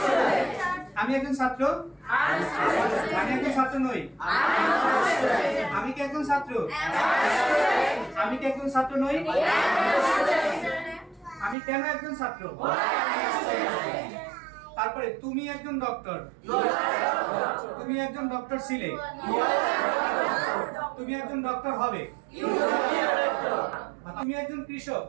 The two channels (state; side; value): drops out; left; at 11.6 s